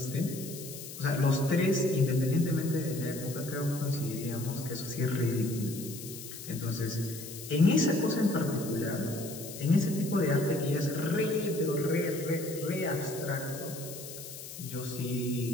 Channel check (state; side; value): noise; left; hiss, 12 dB below the sound